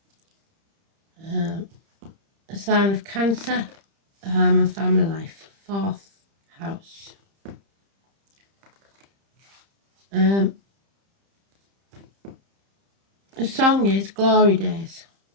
A sign of Cancer, home and family life, 4th house. The song is Glory Days.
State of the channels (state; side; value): late; left; 30 ms